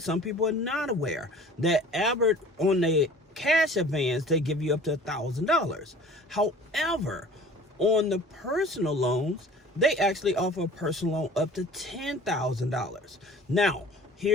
people are not aware that Albert, on the cash advance, they give you up to $1,000. However, on the personal loans, they actually offer a personal loan up to $10,000. Now,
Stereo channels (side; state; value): both; normal; correlation 0.46